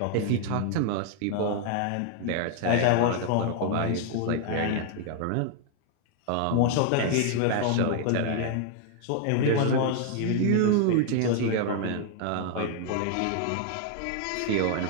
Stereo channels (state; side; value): different; both; correlation 0.00